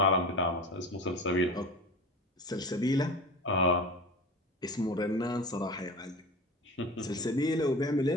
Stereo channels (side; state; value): both; normal; correlation 0.33